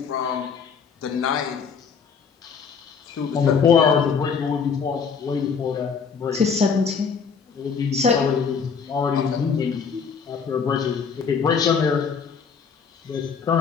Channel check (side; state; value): right; quieter; 6.0 dB